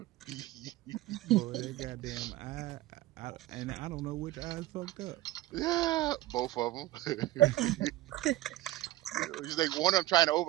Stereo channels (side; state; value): left; quieter; 16.1 dB